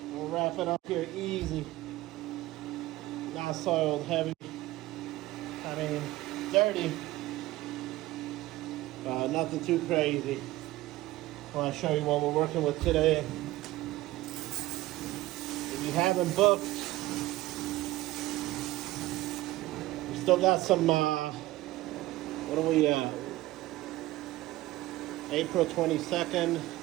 We'll wrap it up here easy. Not soiled, heavy. I mean, dirty. Nothing too crazy. I want to show you what we're working with today. If you haven't booked, we still got some, what are we, April 22nd.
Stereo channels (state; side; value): quieter; left; 17.6 dB